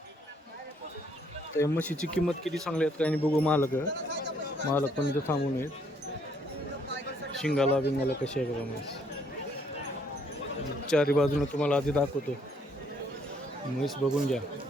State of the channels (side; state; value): both; normal; correlation 0.68